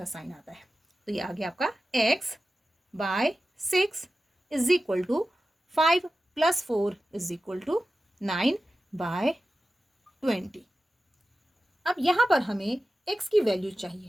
साइन आता है। तो ये आ गया आपका x/6 = 5 + 4 = 9/20। अब यहाँ पर हमें x की वैल्यू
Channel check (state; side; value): normal; both; correlation 0.94